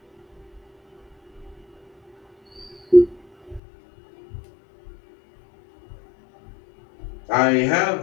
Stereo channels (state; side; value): drops out; right; at 3.6 s